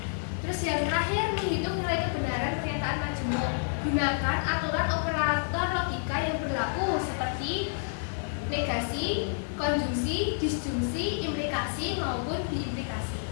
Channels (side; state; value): right; silent; 58 dB below the other